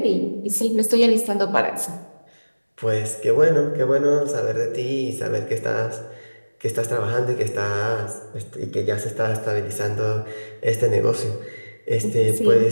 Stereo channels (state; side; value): inverted; both; correlation -1.00